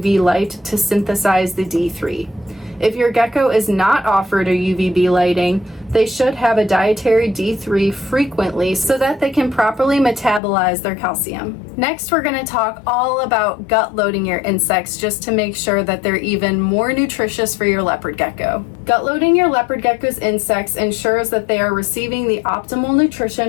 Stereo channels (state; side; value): drops out; right; at 10.4 s